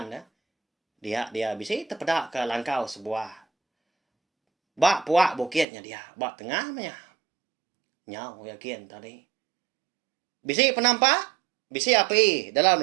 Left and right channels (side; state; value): left; drops out; at 5.7 s